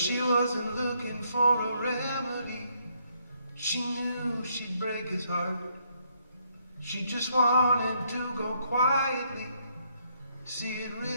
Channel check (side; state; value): both; inverted; correlation -0.72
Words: wasn't looking for a remedy. She knew she'd break his heart. She just wanted to go quietly, see it